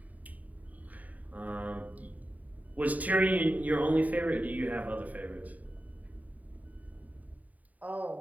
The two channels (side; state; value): left; late; 0.074 ms